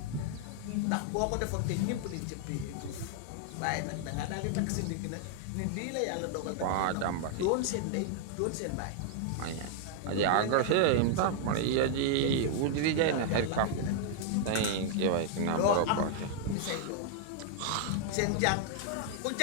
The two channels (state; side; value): different; both; correlation 0.00